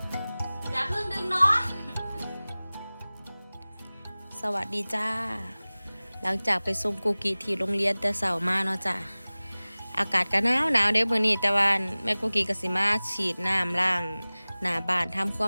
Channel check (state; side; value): inverted; both; correlation -0.99